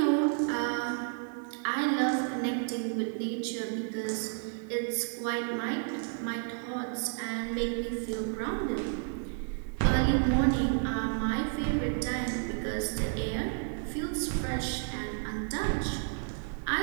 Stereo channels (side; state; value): left; silent; 57 dB below the other